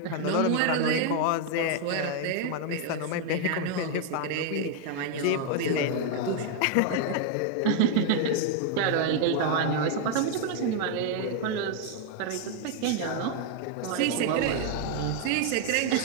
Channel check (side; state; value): both; different; correlation 0.00